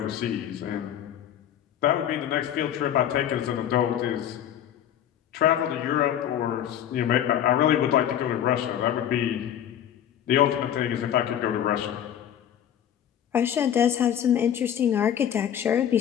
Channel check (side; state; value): right; quieter; 10.2 dB